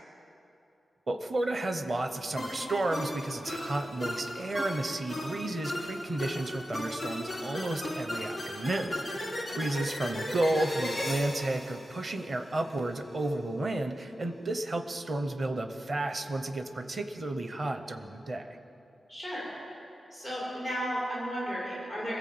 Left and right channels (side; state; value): both; normal; correlation 0.92